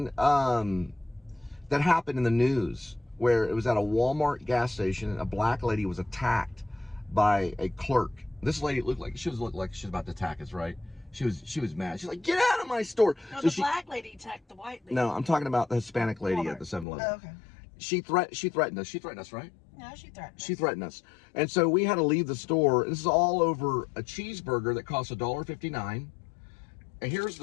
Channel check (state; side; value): drops out; right; at 16.9 s